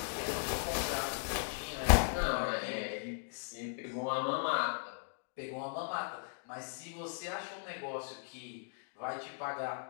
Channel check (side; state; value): right; silent; digital silence